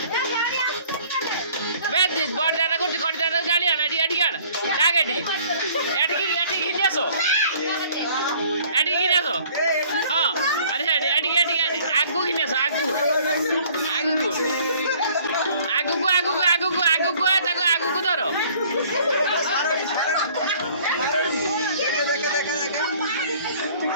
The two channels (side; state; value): both; inverted; correlation -0.55